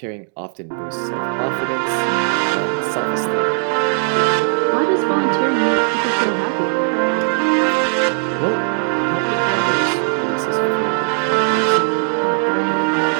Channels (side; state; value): left; silent; digital silence